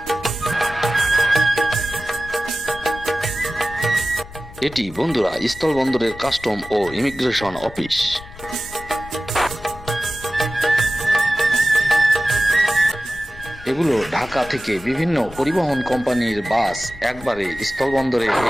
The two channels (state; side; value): noise; left; rumble, 17 dB below the sound